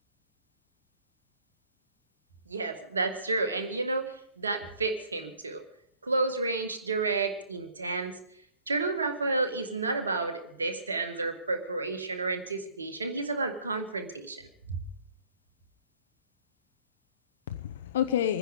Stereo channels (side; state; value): both; inverted; correlation -0.57